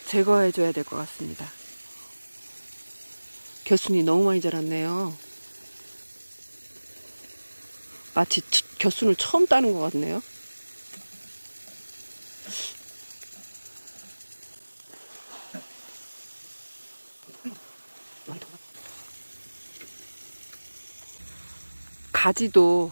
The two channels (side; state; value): both; inverted; correlation -1.00